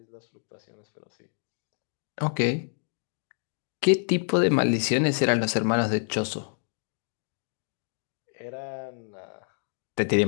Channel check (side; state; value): right; silent; digital silence